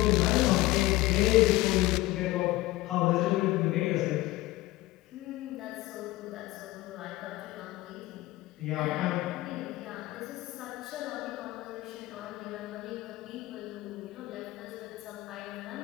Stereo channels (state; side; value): quieter; right; 18.0 dB